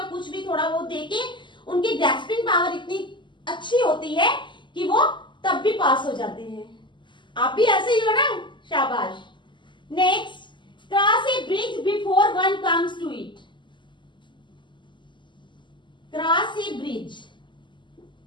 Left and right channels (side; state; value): right; late; 0.23 ms